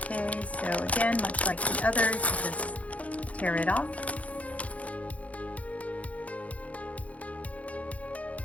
Okay, so again, much like the others, just tear it off.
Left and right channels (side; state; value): right; late; 0.067 ms